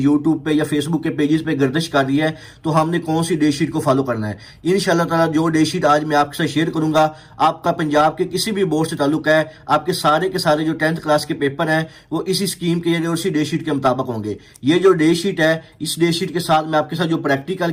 पे या फेसबुक के पेजेस पे गर्दिश कर रही है। तो हमने कौन सी डे शीट को फॉलो करना है, इंशाल्लाह ताला जो डे शीट आज मैं आपके साथ शेयर करूंगा, आपका पंजाब के किसी भी बोर्ड से ताल्लुक है, आपके सारे के सारे जो 10th क्लास के पेपर हैं वो इसी स्कीम के और इसी डे शीट के मुताबिक होंगे। ये जो डे शीट है इस डे शीट के साथ मैं आपके साथ जो प्रैक्टिकल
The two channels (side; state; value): both; identical; correlation 1.00